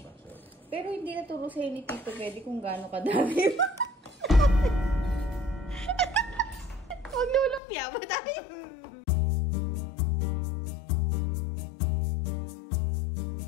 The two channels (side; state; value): right; drops out; at 7.6 s